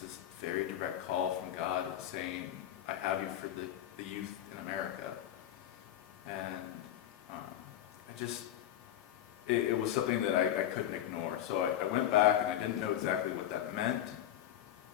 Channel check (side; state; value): right; quieter; 11.6 dB